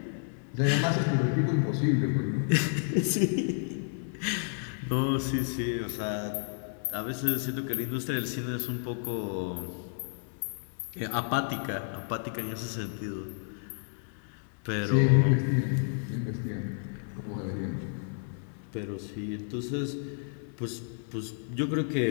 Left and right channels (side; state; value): right; silent; digital silence